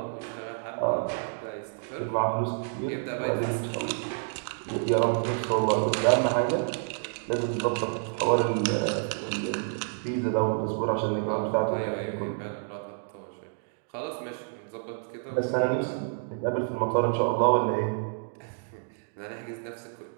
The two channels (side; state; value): left; silent; digital silence